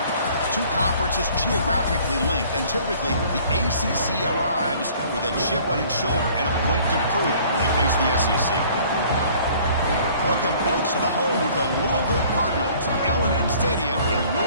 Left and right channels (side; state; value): both; inverted; correlation -0.54